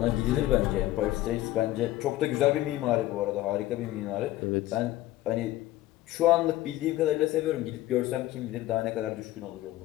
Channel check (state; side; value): quieter; right; 15.7 dB